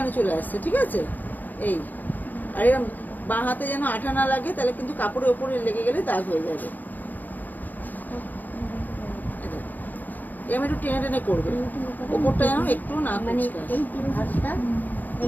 চলে আসছে, ঠিক আছে। এই আর এরকম বাঁ হাতে যেন আঠা না লাগে, তাহলে কিন্তু কাপড়ের ওপরে লেগে গেলে দাগ হয়ে যাবে। এরকম একটু টেনে টেনে করবে, ওপরটা যেন একটু না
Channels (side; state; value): right; late; 0.084 ms